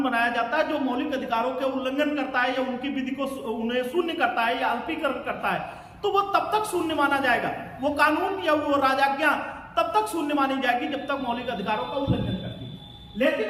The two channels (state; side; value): identical; both; correlation 1.00